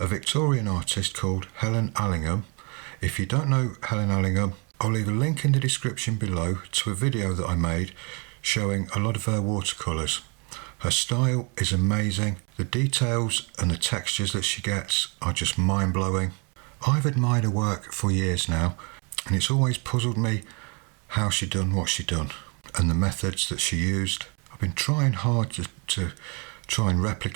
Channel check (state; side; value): quieter; left; 32.9 dB